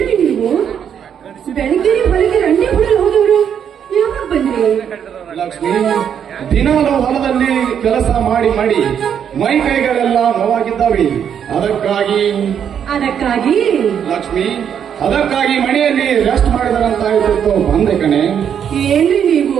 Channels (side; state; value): left; quieter; 8.4 dB